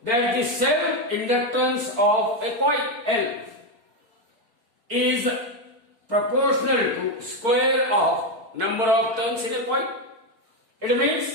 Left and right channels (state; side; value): late; left; 4.5 ms